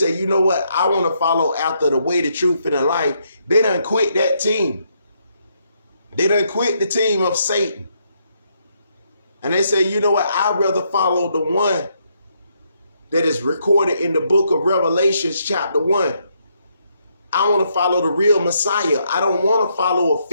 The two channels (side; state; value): both; inverted; correlation -0.75